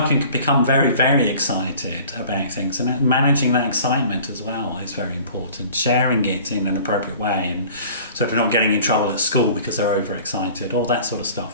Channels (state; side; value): inverted; both; correlation -0.47